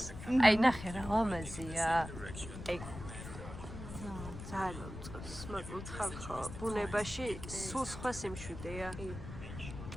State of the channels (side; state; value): left; noise; rumble, 10 dB below the sound